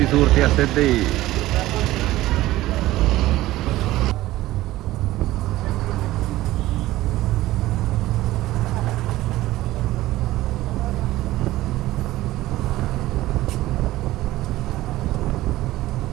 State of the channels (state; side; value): quieter; left; 16.5 dB